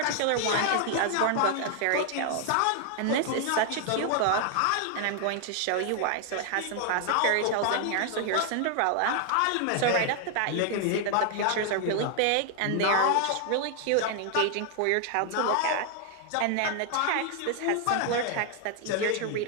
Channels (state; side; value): different; both; correlation 0.00